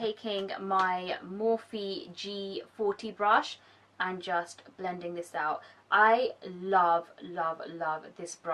my Morphe G40 brush and just blending this out. I love this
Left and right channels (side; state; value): both; identical; correlation 1.00